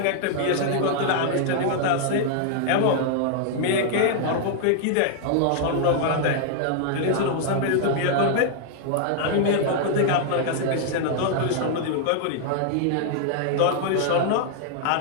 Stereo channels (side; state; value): both; different; correlation -0.01